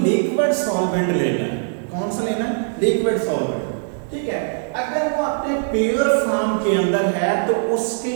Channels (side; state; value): left; silent; digital silence